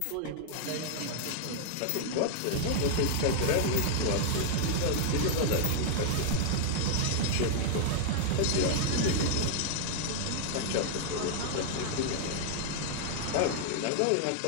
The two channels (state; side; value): different; both; correlation 0.00